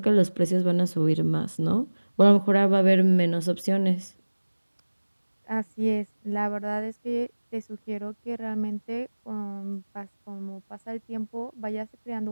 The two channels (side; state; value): both; inverted; correlation -1.00